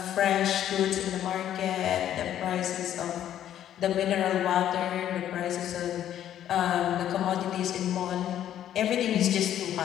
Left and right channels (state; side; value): quieter; right; 11.1 dB